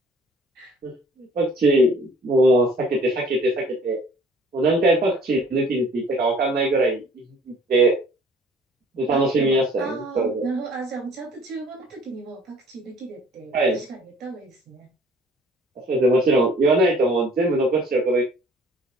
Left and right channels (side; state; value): both; normal; correlation 0.54